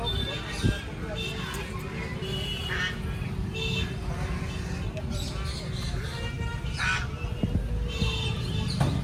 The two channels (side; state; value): both; identical; correlation 1.00